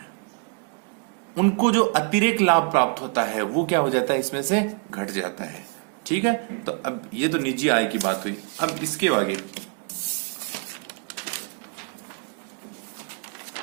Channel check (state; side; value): quieter; left; 37.7 dB